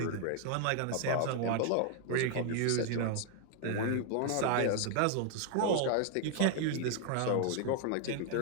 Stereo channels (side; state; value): both; different; correlation 0.00